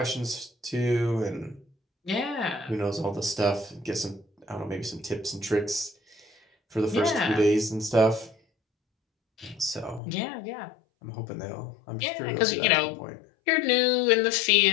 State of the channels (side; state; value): right; drops out; at 10.0 s